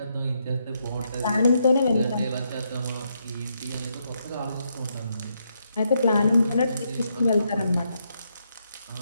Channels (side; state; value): both; inverted; correlation -0.79